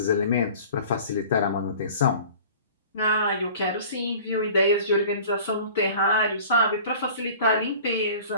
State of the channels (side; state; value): both; inverted; correlation -0.45